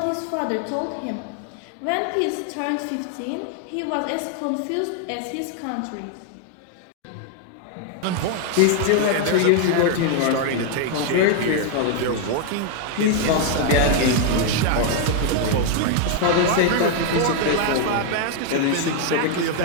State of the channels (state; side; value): different; both; correlation 0.00